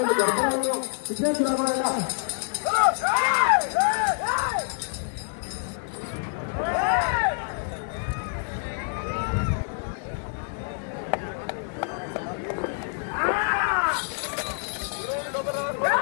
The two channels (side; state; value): right; silent; 60 dB below the other